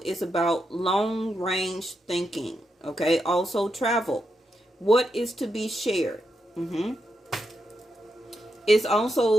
about long range thinking, okay? Also travel. What is to be shared? It's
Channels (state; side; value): normal; both; correlation 0.84